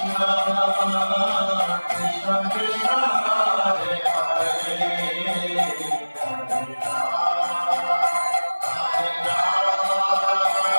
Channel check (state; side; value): inverted; both; correlation -1.00